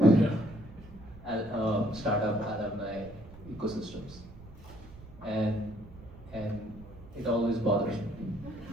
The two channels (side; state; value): right; noise; rumble, 18 dB below the sound